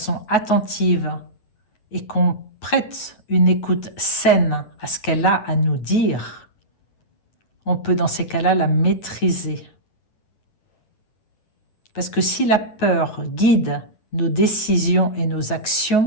attentive et qu'on prête une écoute saine à ce qu'elle a à nous dire, on peut dans ces cas-là la maîtriser. Parce que si la peur guide nos décisions et nos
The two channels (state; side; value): late; right; 9.4 ms